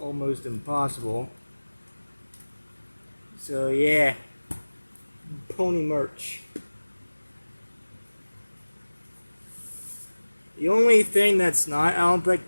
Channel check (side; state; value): both; inverted; correlation -1.00